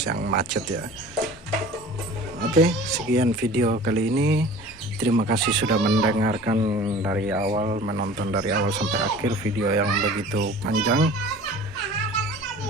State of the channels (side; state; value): both; normal; correlation 0.43